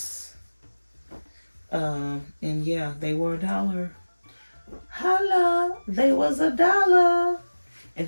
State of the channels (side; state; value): both; inverted; correlation -1.00